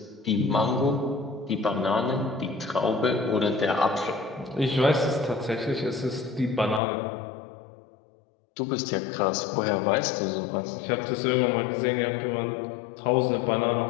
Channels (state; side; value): drops out; right; at 6.8 s